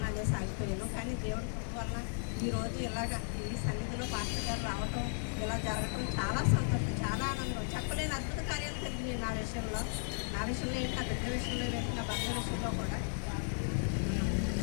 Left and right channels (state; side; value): silent; right; 54 dB below the other